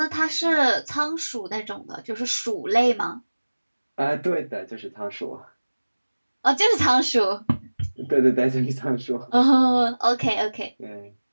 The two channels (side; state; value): both; inverted; correlation -1.00